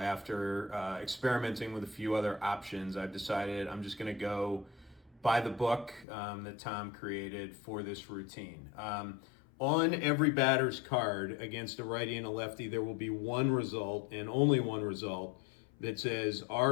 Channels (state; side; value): drops out; right; at 6.1 s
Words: experimenting with a few other options, I've decided I'm just going to go by the book that Tom created for this routine. On every batter's card against a righty and a lefty, there will be one result and only one result that says